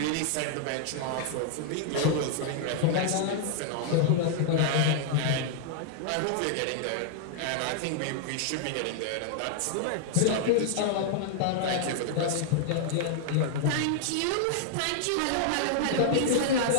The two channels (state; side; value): different; both; correlation -0.01